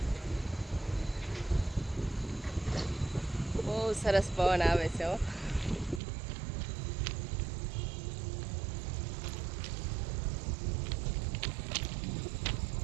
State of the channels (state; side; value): drops out; left; at 6.0 s